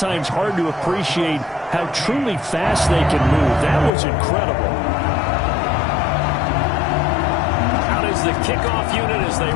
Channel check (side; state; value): right; drops out; at 3.9 s